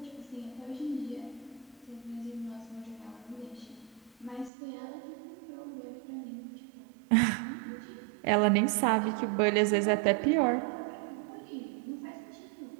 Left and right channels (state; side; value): drops out; left; at 4.5 s